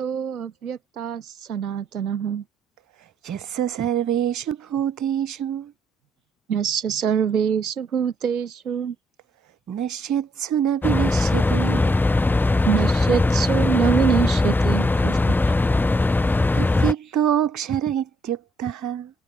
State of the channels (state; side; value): normal; both; correlation 0.73